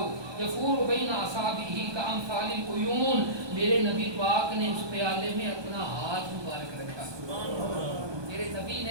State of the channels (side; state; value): left; late; 1.2 ms